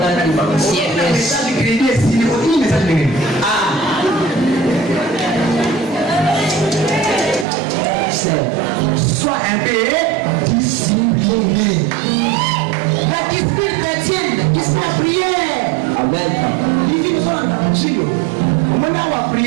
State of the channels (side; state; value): left; drops out; at 7.5 s